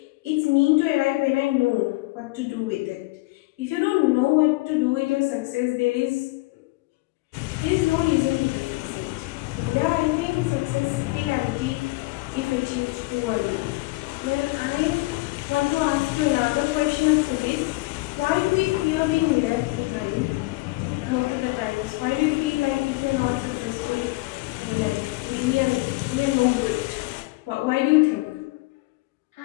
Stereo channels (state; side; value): quieter; right; 22.6 dB